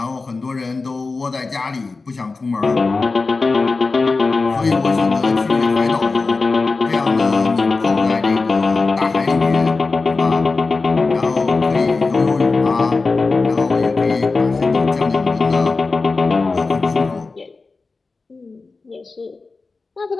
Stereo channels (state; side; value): quieter; right; 3.9 dB